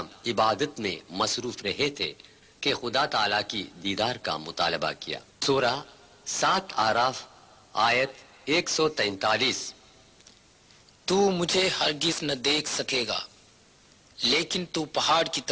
عبادت میں مصروف رہے تھے کہ خدا تعالیٰ کی دیدار کا مطالبہ کیا۔ سورہ 7 آراف آیت 143۔ تو مجھے ہرگز نہ دیکھ سکے گا، لیکن تو پہاڑ کی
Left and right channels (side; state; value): both; identical; correlation 1.00